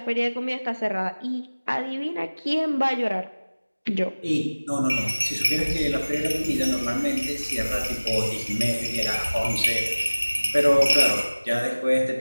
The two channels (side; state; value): both; inverted; correlation -1.00